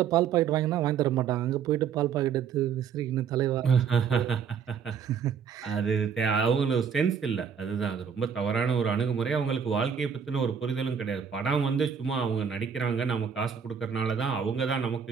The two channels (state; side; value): quieter; left; 7.1 dB